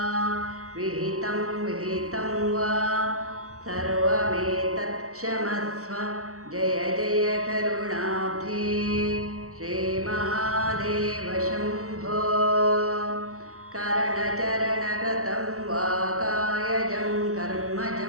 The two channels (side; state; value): left; late; 0.65 ms